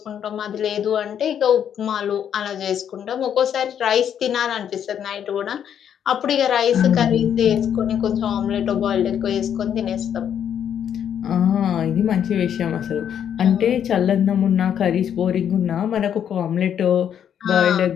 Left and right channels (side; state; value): right; quieter; 9.0 dB